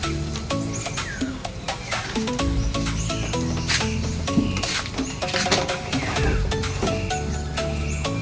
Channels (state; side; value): identical; both; correlation 1.00